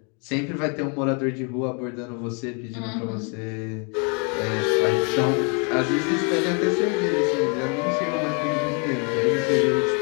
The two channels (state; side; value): quieter; right; 37.0 dB